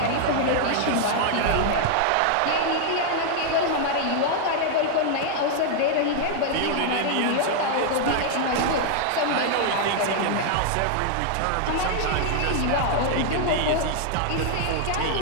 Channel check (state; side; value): different; both; correlation 0.00